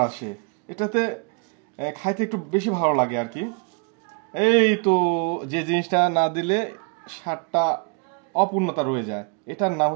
আসে এটাতে, খাইতে একটু বেশি ভালো লাগে আর কি। এই তো, যে জিনিসটা না দিলে স্বাদটা অপূর্ণতা রয়ে যায়, এটার নাম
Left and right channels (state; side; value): quieter; left; 33.0 dB